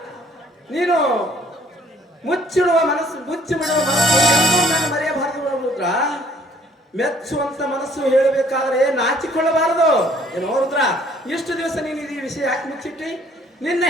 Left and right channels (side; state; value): both; normal; correlation 0.60